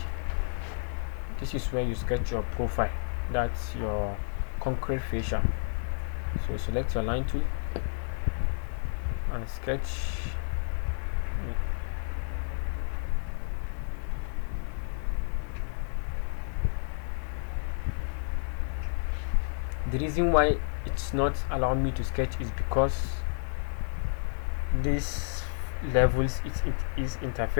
this is where you sketch your profile. That's your concrete fascia. So select your line tool and sketch. The reason why it's not allowing me to sketch is because this levels it is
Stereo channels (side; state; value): right; silent; digital silence